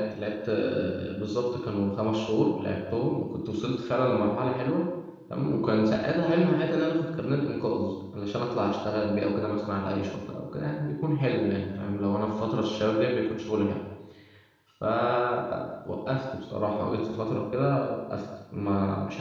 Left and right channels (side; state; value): both; identical; correlation 1.00